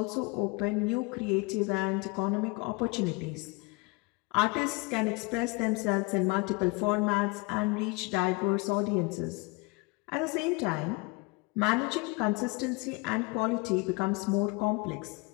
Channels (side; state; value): right; quieter; 26.6 dB